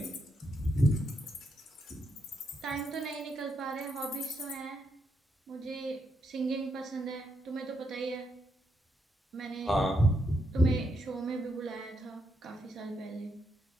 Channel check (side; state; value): both; normal; correlation 0.79